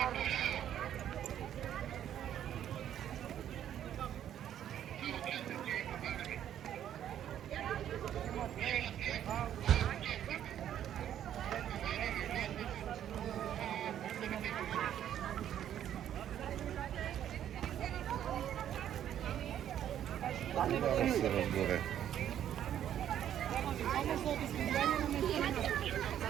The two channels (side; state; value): left; quieter; 10.5 dB